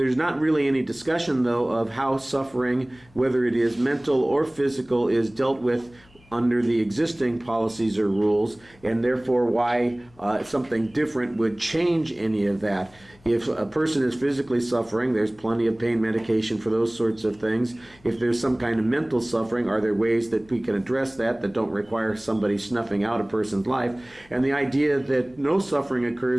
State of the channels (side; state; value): left; noise; hum, 28 dB below the sound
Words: not really any discussion, though, of how suffering, whether it is mental or physical, is dealt with under the existing policies or rules, and therefore why something different would change any of that. If a person is physically suffering, there's plenty of pain medication for those sorts of things. If there's some kind of mental suffering, are there ways that we can address that don't require somebody snuffing out a person's life? And the idea that no suffering